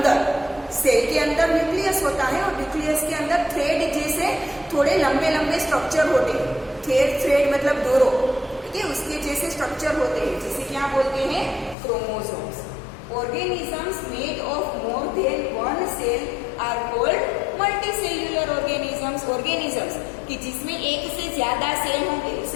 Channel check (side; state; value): right; drops out; at 11.8 s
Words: सेल के अंदर न्यूक्लियस होता है, और न्यूक्लियस के अंदर थ्रेड जैसे थोड़े लंबे लंबे स्ट्रक्चर होते हैं। थ्रेड मतलब डोरो, ठीक है, उसके जैसे स्ट्रक्चर होते हैं, जिसे क्या बोलते हैं? Chromosomes. Organisms made of more than one cell are called multicellular organisms. Organisms कि जिसमें एक से ज्यादा सेल होंगे